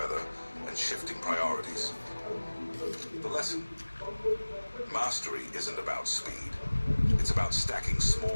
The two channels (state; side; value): inverted; both; correlation -1.00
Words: and shifting priorities. The lesson: mastery isn't about speed. It's about stacking